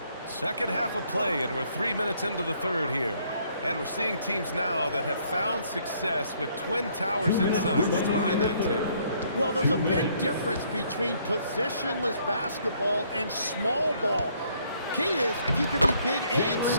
Second half of play, and we're 3 minutes into the third here. And we're seeing teams now that have found success with twin towers inside. What's behind that, Tim? well, there's a big difference between positionless basketball and small ball. Key is, if you can be big and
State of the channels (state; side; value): inverted; both; correlation -0.66